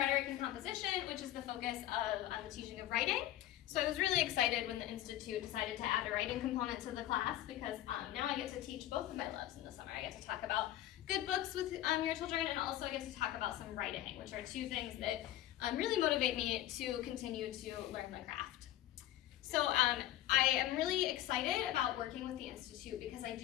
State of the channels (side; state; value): right; quieter; 13.8 dB